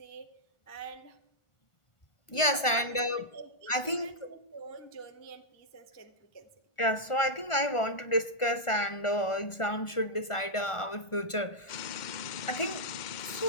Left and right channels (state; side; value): late; right; 1.4 ms